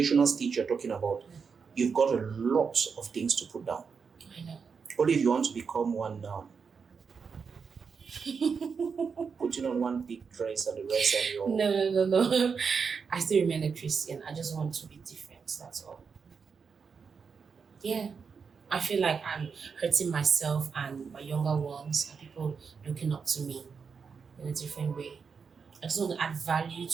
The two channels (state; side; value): quieter; left; 5.7 dB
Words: stage you're talking about, you've got a lot of things to put down. I know. Only if you want to become one now. Putting on one big dress and the rest and your... No. I still remain a Christian. I just want to be different. That's all. Yeah. I feel like I'm hurting myself and my younger ones and people looking up to me in a different way. I just want to add value